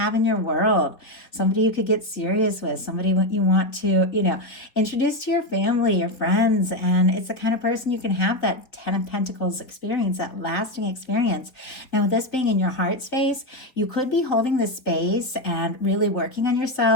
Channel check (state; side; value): late; right; 4.2 ms